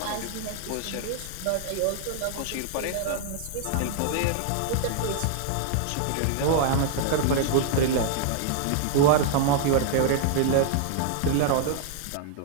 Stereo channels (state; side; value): different; both; correlation 0.00